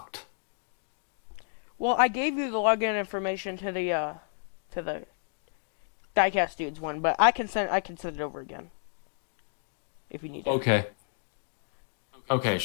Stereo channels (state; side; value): silent; right; digital silence